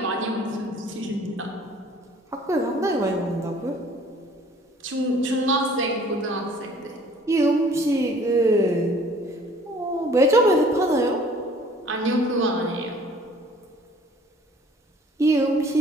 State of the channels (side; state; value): both; normal; correlation 0.54